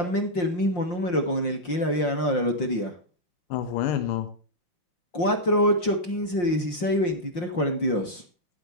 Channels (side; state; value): right; late; 5.7 ms